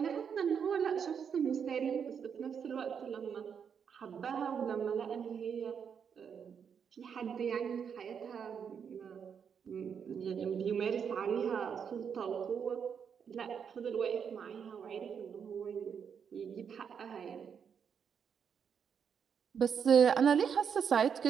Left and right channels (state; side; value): quieter; left; 7.2 dB